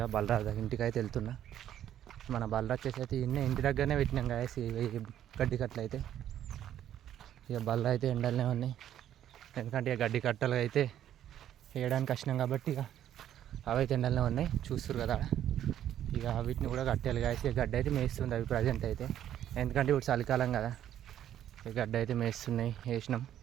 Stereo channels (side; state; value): left; quieter; 11.0 dB